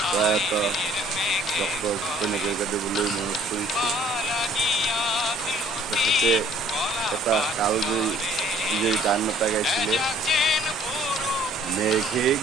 প্ৰয়াত ডক্টৰ ভূপেন হাজৰিকাদেৱলৈ মনত পৰিছে। তেখেতে এটা কালজয়ী গান এটা গাইছিলে, মেঘে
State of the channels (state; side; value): normal; both; correlation 0.57